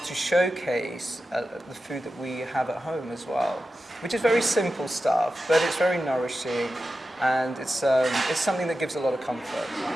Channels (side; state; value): both; normal; correlation 0.92